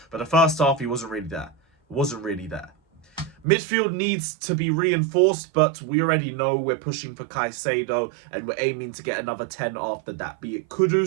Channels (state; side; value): drops out; left; at 3.5 s